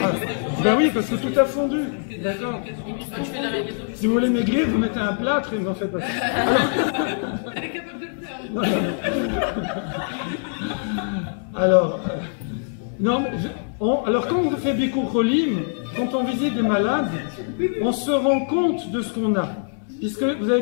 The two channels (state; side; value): silent; right; 60 dB below the other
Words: Ben oui, parce que tout a fondu, d'accord? Si vous voulez maigrir, vous mettez un plâtre et vous en faites pas ça. Elle est capable de le faire. Alors, non, alors quand on fait Bikur Cholim, quand on visite des malades, on se rend compte de ce qu'on a. Puisque vous